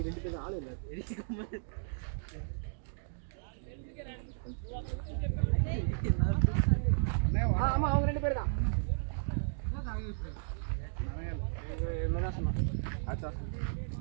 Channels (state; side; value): silent; left; digital silence